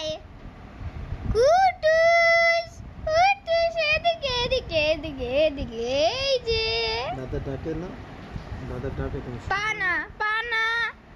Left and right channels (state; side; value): identical; both; correlation 1.00